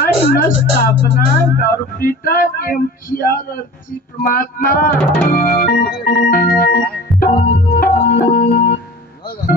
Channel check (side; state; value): both; normal; correlation 0.40